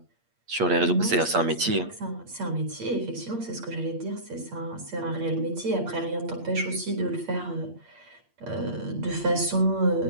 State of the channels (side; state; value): left; late; 8.6 ms